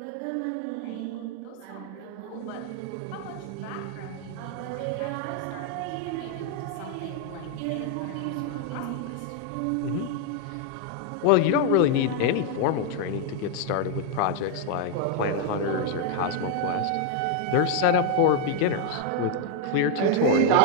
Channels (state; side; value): different; both; correlation 0.01